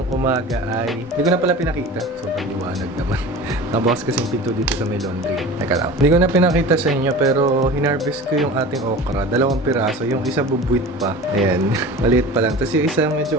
umaga ay hindi ko na pala pinakita, sobrang liwanag naman. Nabukas kasi yung pinto dito sa may laundry. Teka lang, hindi ko na pinakita sa inyo pero hinarvest ko yung ating okra, 2 piraso, yung isa bubuit pa, ayan, maliit pa lang, tapos yung isa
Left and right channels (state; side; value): normal; both; correlation 0.36